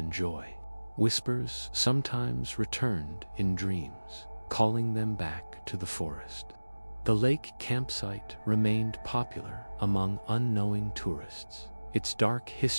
joy. Whispers sometimes returned in dreams, calling them back to the forest. The lake campsite remained popular among unknowing tourists, its dark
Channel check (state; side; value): inverted; both; correlation -1.00